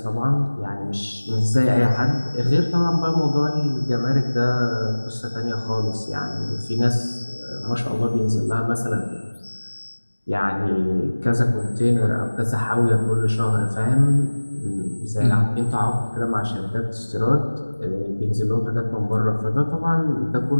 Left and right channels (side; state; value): both; inverted; correlation -1.00